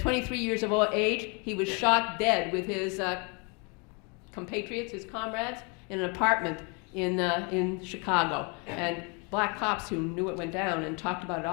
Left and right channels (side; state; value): right; quieter; 33.0 dB